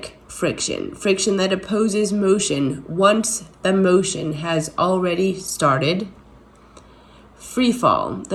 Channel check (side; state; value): both; identical; correlation 1.00